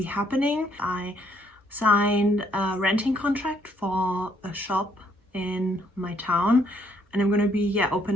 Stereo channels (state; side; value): normal; both; correlation 0.69